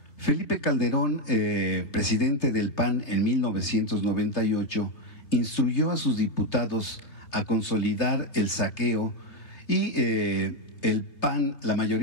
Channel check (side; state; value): right; late; 3.2 ms